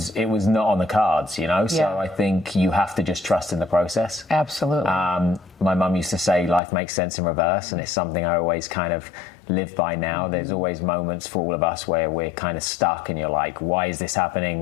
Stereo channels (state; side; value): drops out; right; at 6.6 s